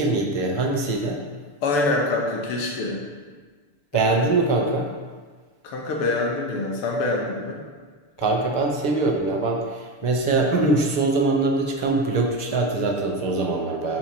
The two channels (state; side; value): late; right; 6.8 ms